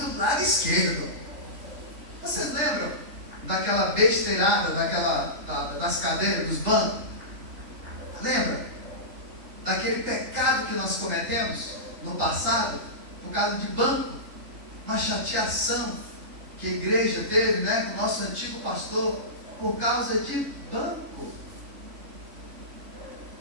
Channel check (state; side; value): late; left; 3.5 ms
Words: do lado esquerdo. Vocês lembram daquela besteirada, das cadeiras, dos bancos? Lembra? Daquele pecado que nós cometemos no passado, por causa de banco. uma chateação que a igreja teve, né, com o nosso antigo pastor, por causa de banco.